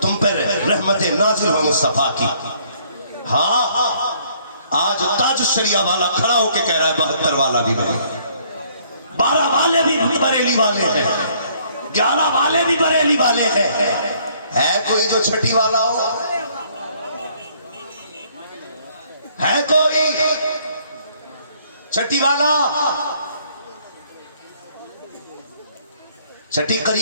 تم پر رحمت نازل ہو مصطفیٰ کی۔ ہاں آج تاج الشریعہ والا کھڑا ہو کے کہہ رہا ہے 72 والا بھی بنے، 12 والے بھی بریلی والے ہیں، 11 والے بھی بریلی والے ہیں۔ ہے کوئی جو چھٹی والا ہو؟ ہے کوئی چھٹی والا؟ چھٹی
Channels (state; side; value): inverted; both; correlation -0.63